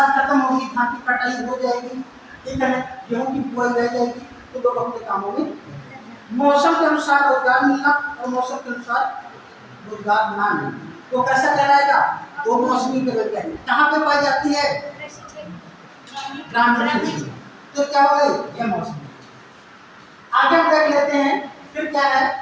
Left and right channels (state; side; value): identical; both; correlation 1.00